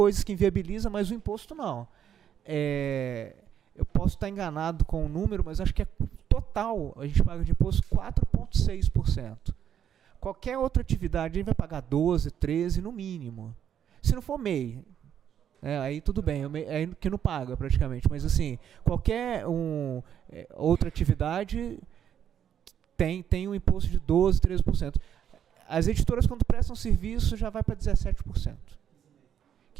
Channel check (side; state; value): left; quieter; 9.3 dB